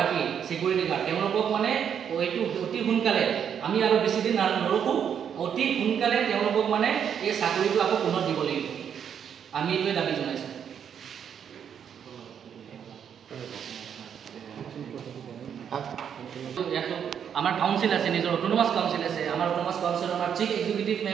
চিকিউৰিটি গাৰ্ড তেওঁলোকক মানে এইটো অতি সোনকালে আমি আৰু বেছি দিন নৰখোঁ, অতি সোনকালে তেওঁলোকক মানে এই চাকৰিটো আকৌ পুনৰ দিব লাগিব। আমি এইটোৱে দাবী জনাইছোঁ। আমাৰ কাউন্সিল আছে, নিজৰ অট'নমাছ কাউন্সিল আছে। আমাৰ অট'নমাছ কাউন্সিলৰ আমাৰ chief executive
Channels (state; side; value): quieter; left; 8.2 dB